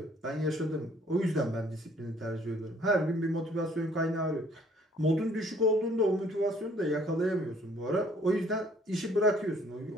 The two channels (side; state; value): both; normal; correlation 0.60